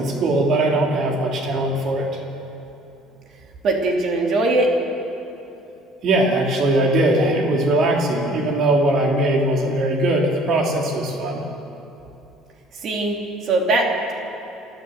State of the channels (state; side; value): normal; both; correlation 0.53